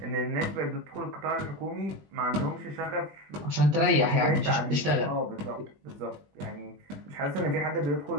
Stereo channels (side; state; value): left; late; 20 ms